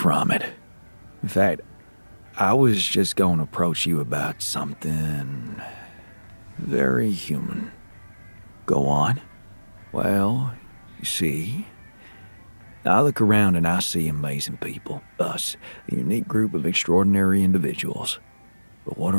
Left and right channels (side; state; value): both; inverted; correlation -1.00